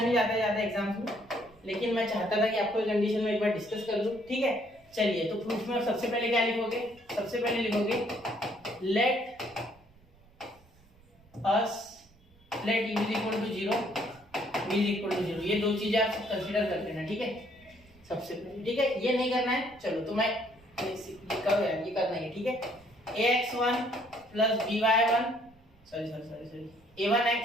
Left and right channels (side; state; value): right; noise; rumble, 28 dB below the sound